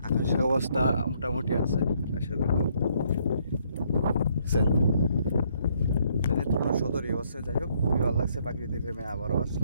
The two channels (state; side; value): inverted; both; correlation -0.68